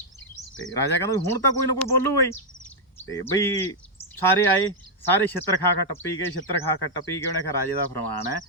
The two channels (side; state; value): both; normal; correlation -0.03